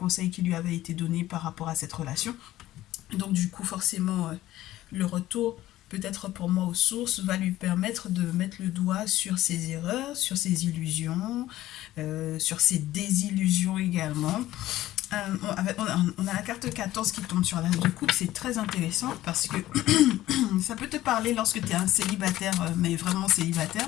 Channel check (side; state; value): right; quieter; 15.0 dB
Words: qui lui avaient été donnés par rapport à cette relation. Donc du coup, forcément, le retour, peut-être pour moi aux sources, va lui permettre de mettre le doigt sur ses erreurs, sur ses illusions, sur ses désillusions également. On a la carte 14 qui tombe sur l'as de coupe, c'est très intéressant parce que ça peut te parler lorsque tu es un célibataire, mais vraiment célibataire,